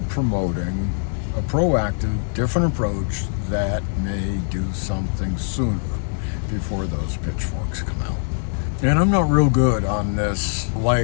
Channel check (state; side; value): silent; right; digital silence